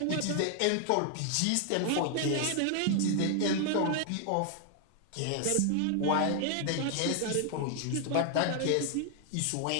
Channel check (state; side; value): different; both; correlation 0.00